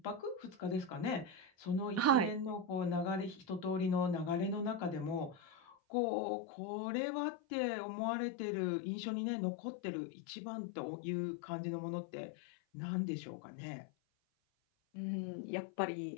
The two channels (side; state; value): right; drops out; at 5.8 s